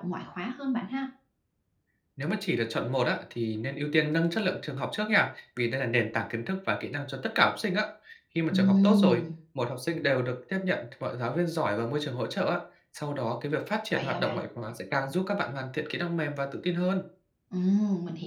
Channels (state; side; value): identical; both; correlation 1.00